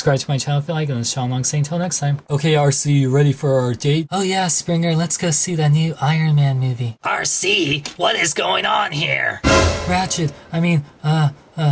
to my channel if you like, and this is Sean Long saying until next time. Okay, RC, you ready for our date? Oh yeah, Springer, let's go see that new Iron Man movie. RC, what is going on here? Ratchet, I mean,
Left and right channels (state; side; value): identical; both; correlation 1.00